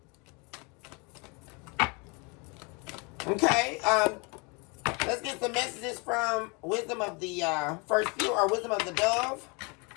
Okay, let's get some messages from Wisdom of the First Few, or Wisdom of the Dove.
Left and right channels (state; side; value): quieter; right; 30.7 dB